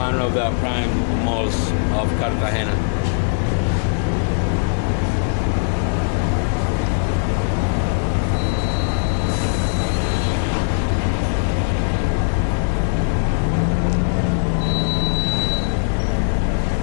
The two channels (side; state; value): right; silent; digital silence